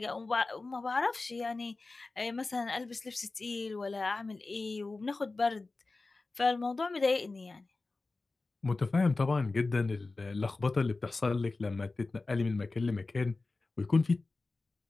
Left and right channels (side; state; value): right; quieter; 3.5 dB